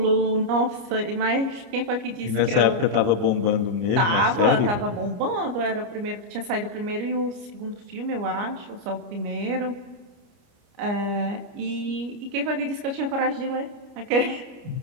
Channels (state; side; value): late; left; 29 ms